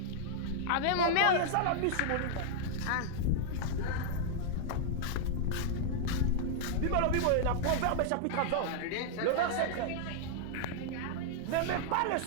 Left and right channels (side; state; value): both; different; correlation -0.01